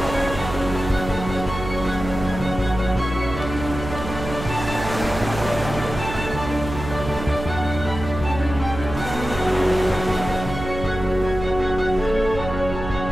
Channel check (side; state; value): right; noise; hum, 8 dB below the sound